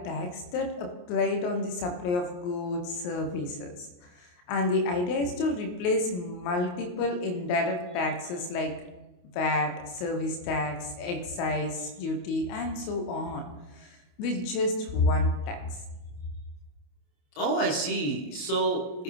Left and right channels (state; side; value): late; right; 28 ms